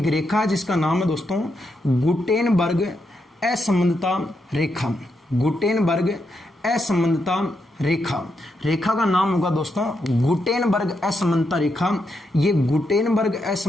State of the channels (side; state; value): both; normal; correlation 0.82